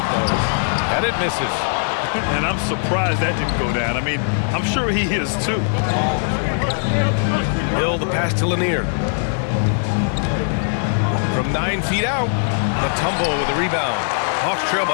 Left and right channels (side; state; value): right; silent; digital silence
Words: those. And it misses. And I'm surprised that didn't go down. I mean, I'm sure he is too. Hill, the pass to Lanier. From 9 feet out, Mutombo with the rebound. Hawks trail